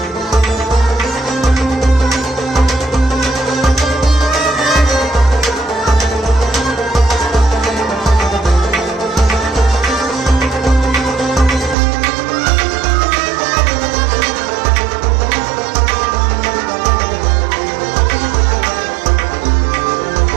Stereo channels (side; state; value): left; drops out; at 11.8 s